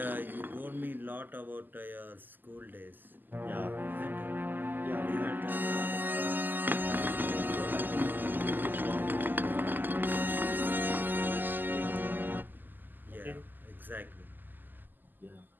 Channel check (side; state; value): left; late; 0.089 ms